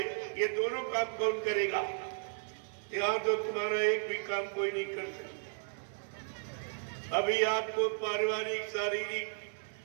ये दोनों काम कौन करेगा? यहाँ तो तुम्हारा एक भी काम कोई नहीं कर सकता। अभी आपको पारिवारिक शारीरिक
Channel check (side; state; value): left; silent; 55 dB below the other